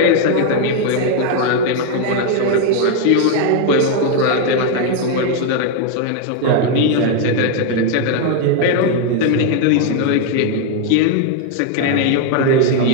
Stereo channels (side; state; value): both; different; correlation 0.01